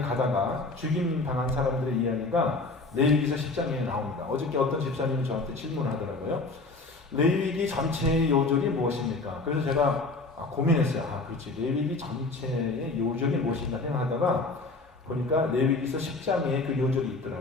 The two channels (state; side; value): quieter; right; 3.5 dB